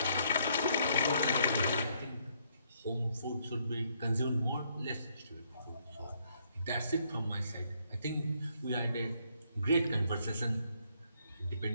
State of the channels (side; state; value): both; inverted; correlation -0.71